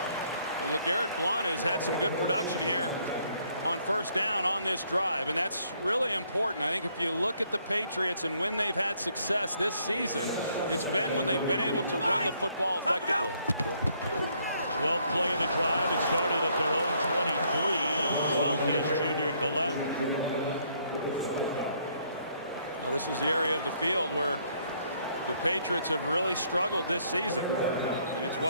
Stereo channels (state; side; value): inverted; both; correlation -0.68